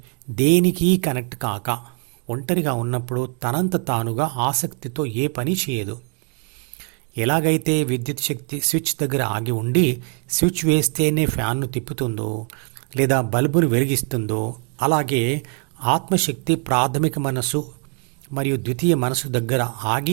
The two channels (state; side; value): quieter; left; 39.8 dB